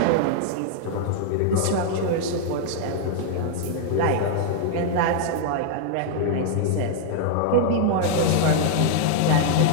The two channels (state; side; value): different; both; correlation -0.01